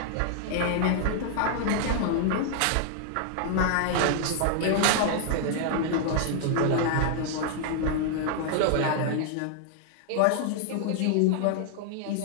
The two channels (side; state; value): both; different; correlation 0.00